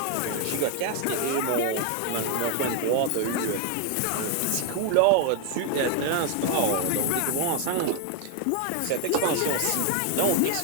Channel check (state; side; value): different; both; correlation 0.00